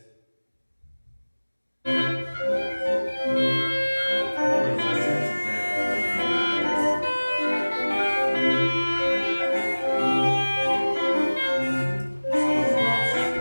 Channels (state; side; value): inverted; both; correlation -1.00